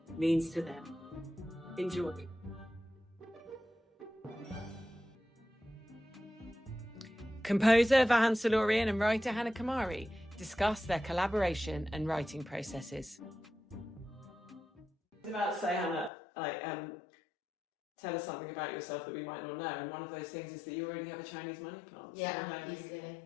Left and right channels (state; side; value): drops out; right; at 16.1 s